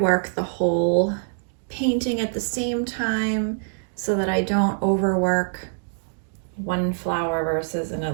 the whole painting at the same time so that I don't overwork one flower versus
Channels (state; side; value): silent; left; digital silence